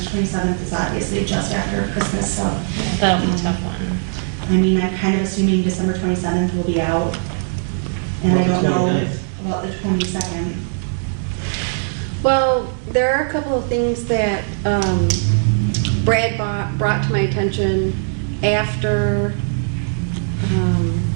27th is obviously just after Christmas, so. That was a tough one. I mean, I'm kind of assuming December 27th will be out. And I About don't the know 29th. about the 22nd. Well, there are a couple of things that Brad brought to my attention after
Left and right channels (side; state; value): left; silent; digital silence